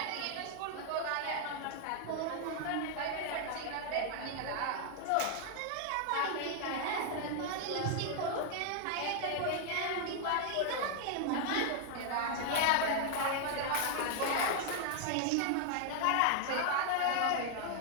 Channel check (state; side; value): different; both; correlation 0.00